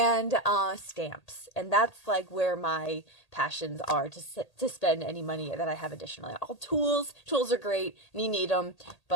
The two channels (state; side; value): late; right; 1.8 ms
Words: stamps. And that's like where my passions are, to spend any money that I have additionally. All tools are great and you need them,